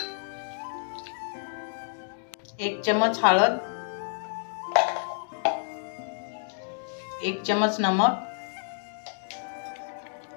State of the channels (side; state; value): right; silent; digital silence